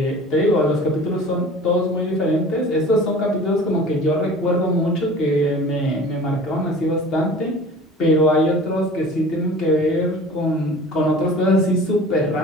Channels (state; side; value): normal; both; correlation 0.42